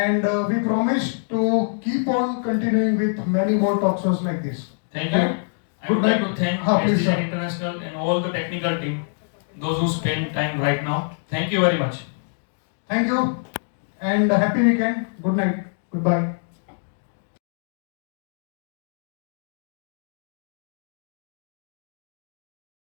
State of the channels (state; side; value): silent; right; digital silence